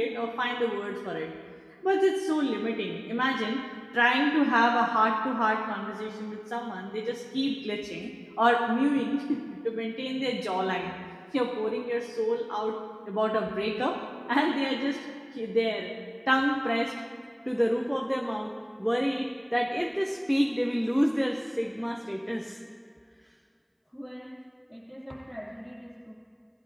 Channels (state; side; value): identical; both; correlation 1.00